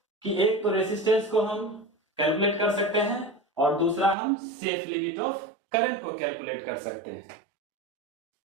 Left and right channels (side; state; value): left; drops out; at 4.2 s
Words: कि एक तो रेसिस्टेंस को हम कैलकुलेट कर सकते हैं और दूसरा हम सेफ लिमिट ऑफ करंट को कैलकुलेट कर सकते हैं।